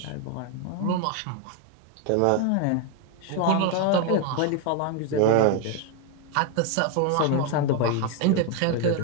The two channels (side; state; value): both; different; correlation 0.01